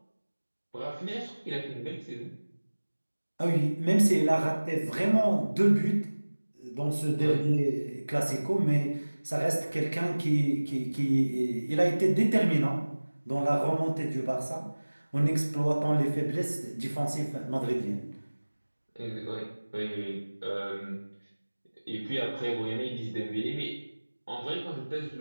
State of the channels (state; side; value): inverted; both; correlation -1.00